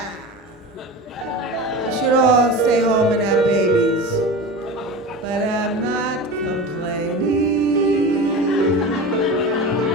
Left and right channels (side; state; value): both; normal; correlation 0.29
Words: They should all stay home and have babies. But I'm not complaining.